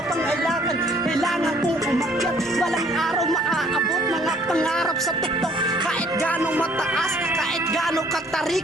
pang kailangan, kailangan kong umakyat. Walang araw maaabot mga pangarap sa tuktok. Kahit gano'ng mataas, kahit gano'ng katari,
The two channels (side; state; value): both; normal; correlation 0.59